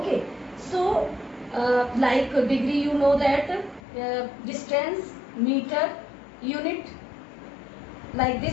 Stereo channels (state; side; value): drops out; right; at 3.8 s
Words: So like degree, you know that distance, meter, unit. Like